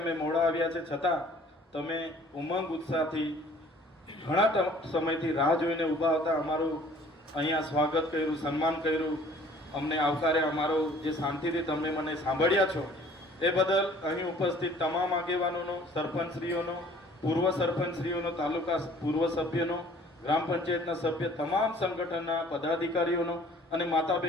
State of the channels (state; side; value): normal; both; correlation 0.53